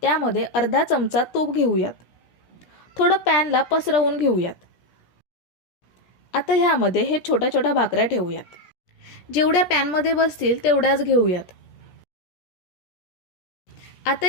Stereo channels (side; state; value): right; late; 17 ms